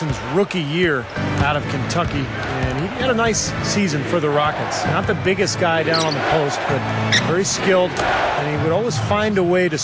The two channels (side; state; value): both; identical; correlation 1.00